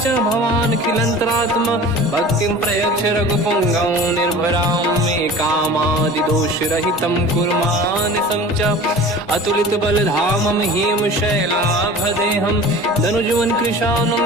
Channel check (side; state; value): both; normal; correlation 0.40